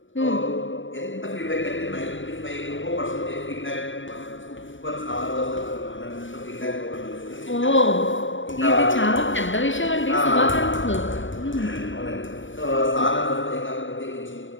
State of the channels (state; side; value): late; right; 0.56 ms